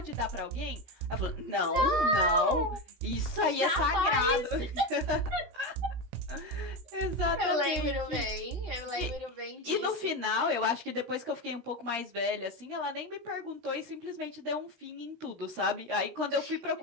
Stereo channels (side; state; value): left; late; 16 ms